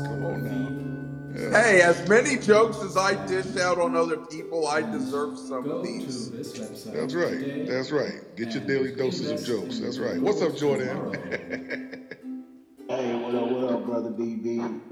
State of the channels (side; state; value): both; identical; correlation 1.00